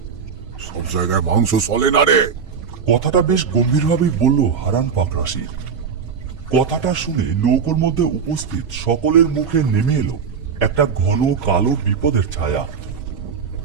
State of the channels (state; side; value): quieter; left; 6.4 dB